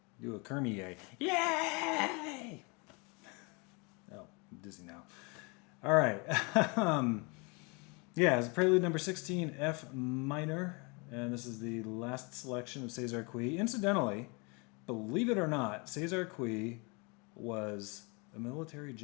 Do a Kermie yay! Yay! Oh, I'm dizzy now. All right. Yeah, it's Prelude number 16, F minor. And this is the last selection of César Cui. Incidentally, believe it or not, César Cui was a military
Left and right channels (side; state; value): right; quieter; 30.7 dB